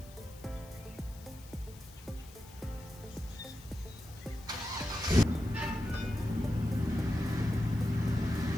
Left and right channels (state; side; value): noise; left; hiss, 21 dB below the sound